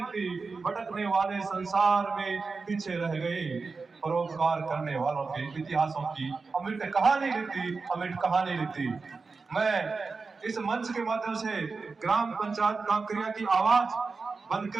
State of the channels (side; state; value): left; quieter; 4.4 dB